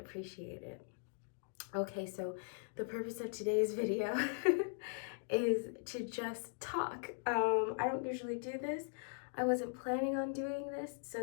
it. Okay, so the purpose of today's video is to just talk. I don't usually do this. I wasn't planning on doing this, so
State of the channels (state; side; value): silent; right; digital silence